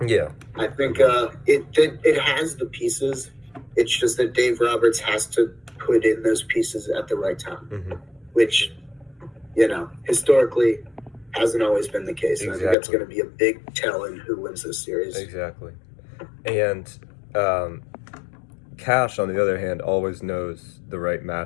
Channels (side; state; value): right; drops out; at 12.8 s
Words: Yeah, I think it has the pieces. It's just that Dave Roberts has to put in those pieces at the right time, mm-hmm. which historically hasn't always been the case. Exactly. I think that's going to be a big tell in who wins this series. Exactly. And Cash, on the other hand, always knows the right